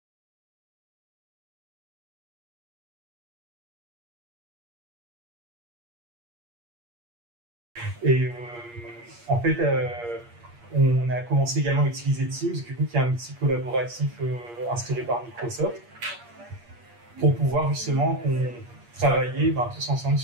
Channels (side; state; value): left; late; 8.5 ms